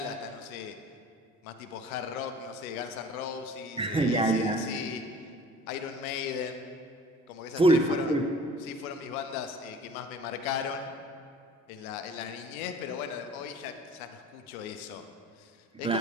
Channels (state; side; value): normal; both; correlation 0.45